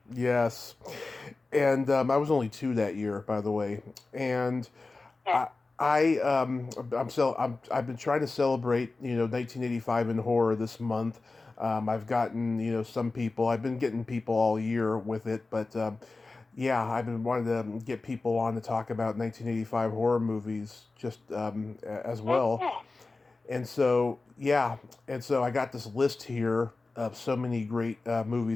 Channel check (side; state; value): right; quieter; 3.6 dB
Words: Yes, and I was only 2 that year, by the way, and Yeah. I've been trying to celebrate 1985 in horror this month. I've gotten some people. I've been getting people all year with it, but Yeah, I've been wanting to get people on to talk about 1985 horror movies just as well. Mhm. And so, yeah, and so I got this list here of so many great